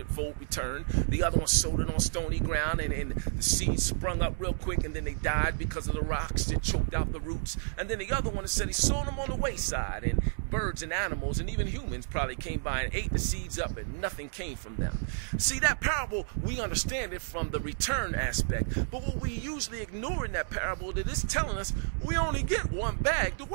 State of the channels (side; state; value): left; silent; 57 dB below the other